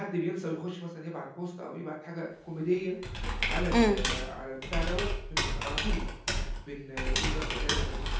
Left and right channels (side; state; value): both; identical; correlation 1.00